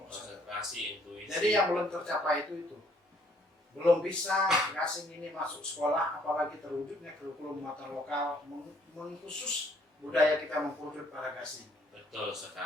Konsentrasi, intuisi. Jadi yang belum tercapai itu. Belum bisa gasing ini masuk sekolah, apalagi terwujudnya kurikulum muatan lokal mengkhusus budaya kita mengkerucut pada gasing. Betul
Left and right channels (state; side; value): normal; both; correlation 0.64